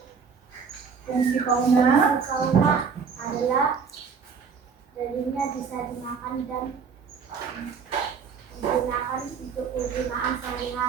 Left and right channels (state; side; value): quieter; left; 6.0 dB